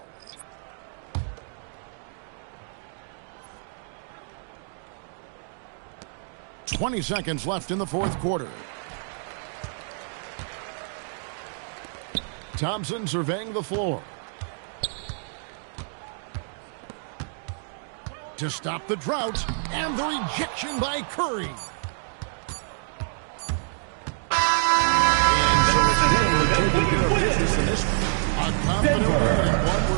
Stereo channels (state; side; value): silent; left; 59 dB below the other